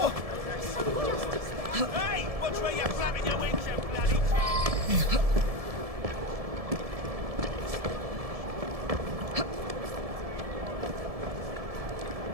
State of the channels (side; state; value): left; late; 1.7 ms